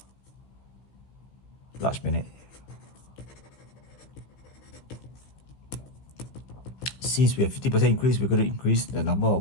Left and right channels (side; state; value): right; late; 15 ms